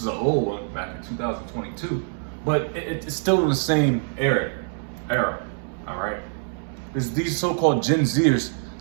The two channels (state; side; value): silent; left; 62 dB below the other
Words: an old one back in 2022, but it's still in the same era. All right. These so-called Gen Zers,